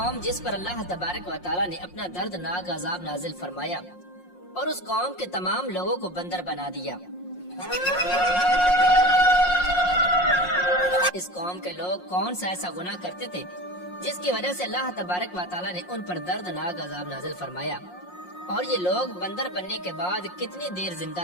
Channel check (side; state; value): right; late; 5.6 ms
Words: جس پر اللہ تبارک و تعالیٰ نے اپنا دردناک عذاب نازل فرمایا اور اس قوم کے تمام لوگوں کو بندر بنا دیا۔ اس قوم کے لوگ کون سا ایسا گناہ کرتے تھے جس کی وجہ سے اللہ تبارک و تعالیٰ نے ان پر دردناک عذاب نازل فرمایا، اور یہ لوگ بندر بننے کے بعد کتنی دیر زندہ